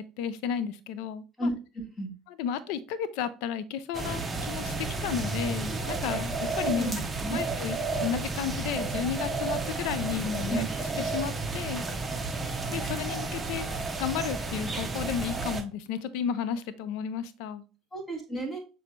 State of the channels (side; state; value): both; normal; correlation 0.41